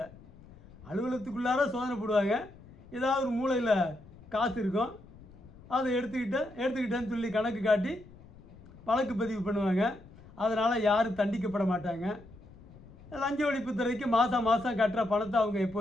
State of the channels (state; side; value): noise; left; rumble, 21 dB below the sound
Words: அலுவலகத்துக்குள்ளார சோதனை போடுவாங்க, ஏதாவது ஒரு மூலையில் காசு இருக்கும், அதை எடுத்துக்கிட்டேன்னு சொல்லி கணக்கு காட்டி வழக்கு பதிவு பண்ணுவாங்க. அதனால் யாரும் தண்டிக்கப்பட மாட்டாங்க. லஞ்ச ஒழிப்புத்துறைக்கு மாதம் கட்டுற பணத்தை அவங்க